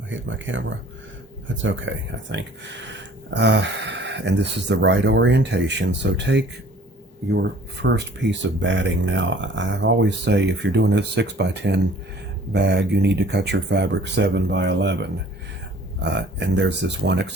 I hit my camera. That's okay, I think. And this is the right orientation. So take your first piece of batting. Now, I always say if you're doing a 6x10 bag, you need to cut your fabric 7x11. And there's this one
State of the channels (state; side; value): normal; both; correlation 0.52